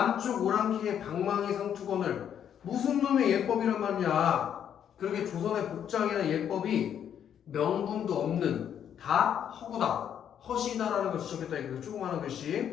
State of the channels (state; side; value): quieter; right; 9.1 dB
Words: 오랑캐의 방망이 상투건을 무슨 놈의 예법이란 말이냐. 그러게 조선의 복장이나 예법이 명분도 없는 다 허구다. 허시다라는 걸 지적했다. 이거 조그마한